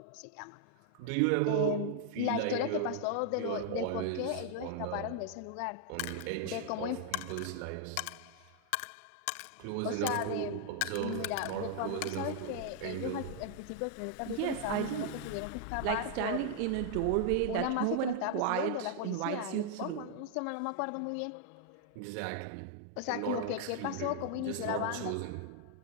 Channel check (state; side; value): different; both; correlation 0.00